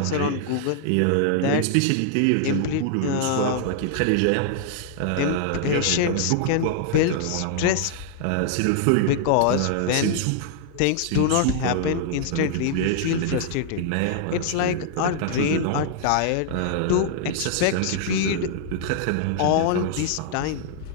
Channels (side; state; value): both; different; correlation -0.01